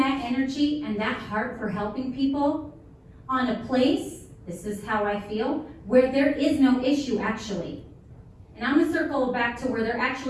energy and that heart for helping people on a place, this is how I feel, where there is no issue actually. And I'm gonna circle back to where there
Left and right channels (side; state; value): both; identical; correlation 1.00